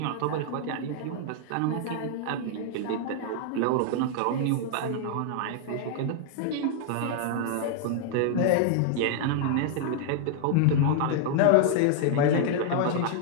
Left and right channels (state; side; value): different; both; correlation -0.01